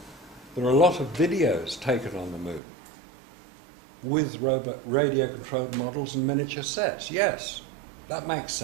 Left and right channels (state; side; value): drops out; left; at 2.6 s